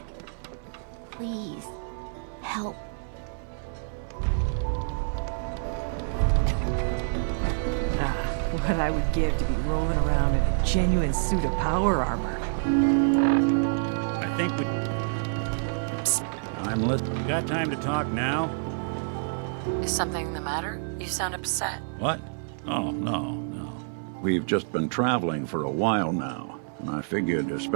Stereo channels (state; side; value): silent; left; 60 dB below the other